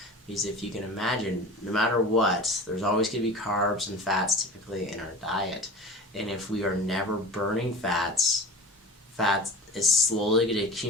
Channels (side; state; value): both; normal; correlation 0.36